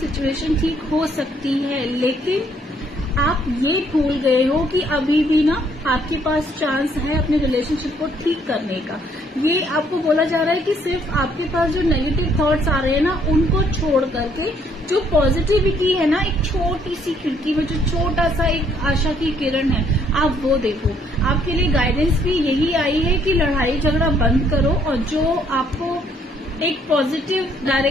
ठीक हो सकती है। लेकिन आप ये भूल गए हो कि अभी भी ना आपके पास चांस है अपने रिलेशनशिप को ठीक करने का। ये आपको बोला जा रहा है कि सिर्फ आपके पास जो नेगेटिव थॉट्स आ रहे हैं ना, उनको छोड़ करके जो पॉजिटिविटी है ना, एक छोटी सी खिड़की में जो छोटा सा एक आशा की किरण है, आप वो देखो। आपके लिए गाइडेंस भी यही आई है कि लड़ाई झगड़ा बंद करो, और जो आपको एक पॉजिटिव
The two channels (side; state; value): both; normal; correlation 0.66